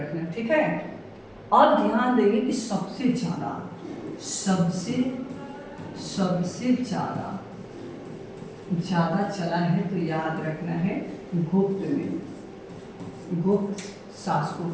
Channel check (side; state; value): both; identical; correlation 1.00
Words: है, ठीक है। अब ध्यान देंगे कि सबसे ज़्यादा, सबसे ज़्यादा चला है, तो याद रखना है गुप्त में, गुप्त शासकों